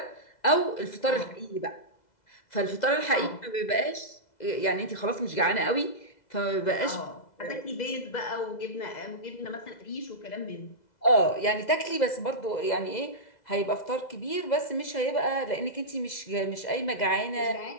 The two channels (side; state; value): right; late; 2.0 ms